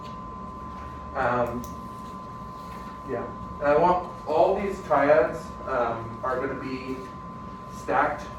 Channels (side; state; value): both; identical; correlation 1.00